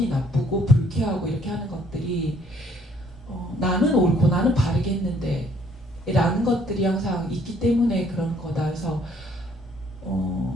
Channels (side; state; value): both; normal; correlation 0.63